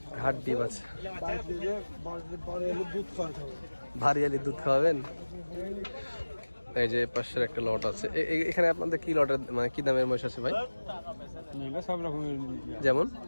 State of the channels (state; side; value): inverted; both; correlation -1.00